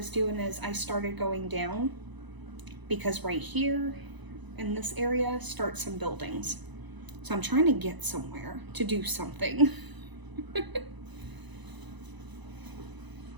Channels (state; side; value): late; left; 1.0 ms